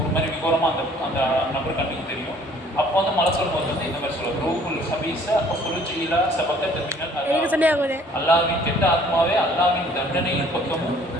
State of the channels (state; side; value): normal; both; correlation 0.56